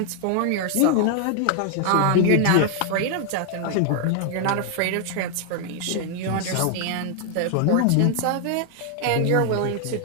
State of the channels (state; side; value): different; both; correlation 0.00